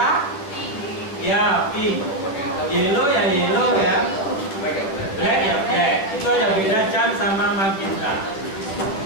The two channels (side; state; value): right; late; 10 ms